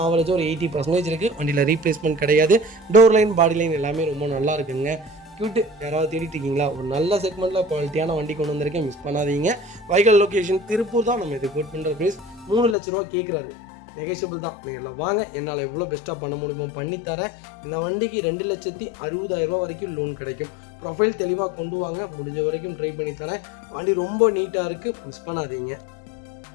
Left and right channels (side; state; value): right; drops out; at 12.8 s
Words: ஆவரேஜாக ஒரு 80% இருக்குது. வண்டியில் ரீப்ளேஸ்மெண்ட் கிடையாது. டோர் லைன், பாடி லைன் எல்லாமே ரொம்ப நல்லா இருக்குங்க. கியூட்டு யாராவது தேடிட்டு இருக்கீங்களா, ஒரு நல்ல செக்மெண்ட்டில் குவாலிட்டியான வண்டி கொண்டு வந்திருக்கேன், மிஸ் பண்ணாதீங்க. வெஹிக்கிள் லொக்கேஷன் திருப்பூர் தான். நம்ம இது குட் பண்ணுற ப்ரைஸ் 3 லட்ச ரூபா கேட்குறாரு. நெகோஷியபிள் தான். நீங்கள் வாங்க, என்னால் எவ்வளோ பெஸ்ட்டாக பண்ண முடியுமோ பண்ணித்தரேன். இந்த வண்டிக்கு 2,60,000 வரைக்கும் லோன் கிடைக்கும். ப்ரொஃபைல் தெளிவாக கொண்டு வாங்க, முடிஞ்ச வரைக்கும் ட்ரை பண்ணித்தரேன். வண்டி ரொம்ப நீட்டாக இருக்குது, மிஸ் பண்ணாதீங்க.